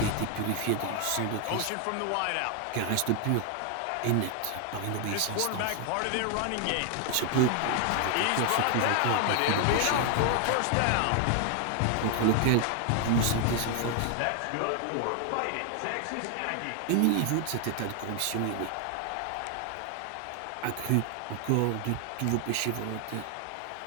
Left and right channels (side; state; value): both; different; correlation 0.00